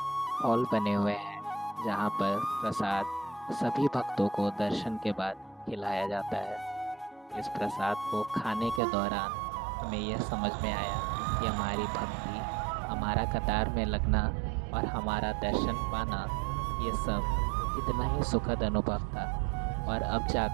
हॉल बने हुए हैं जहाँ पर प्रसाद सभी भक्तों को दर्शन के बाद खिलाया जाता है। इस प्रसाद को खाने के दौरान हमें यह समझ में आया कि हमारी भक्ति, हमारा कतार में लगना और हमारा दर्शन पाना, ये सब कितना ही सुखद अनुभव था, और अब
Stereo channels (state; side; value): drops out; left; at 8.8 s